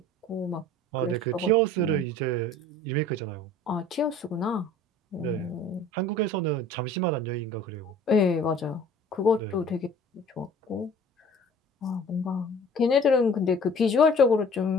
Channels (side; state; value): both; normal; correlation 0.48